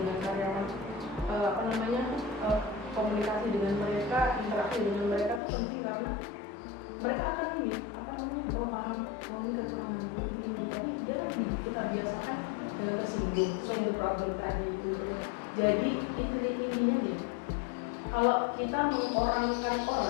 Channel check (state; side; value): drops out; right; at 5.4 s